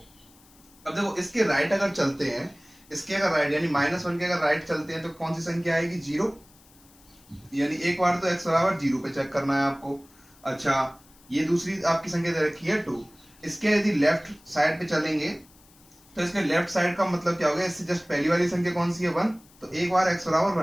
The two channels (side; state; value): left; noise; hiss, 27 dB below the sound